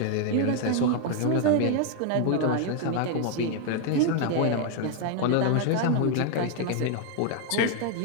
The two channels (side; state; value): both; different; correlation 0.00